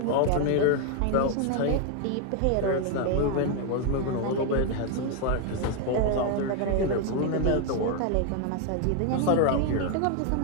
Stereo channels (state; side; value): different; both; correlation 0.01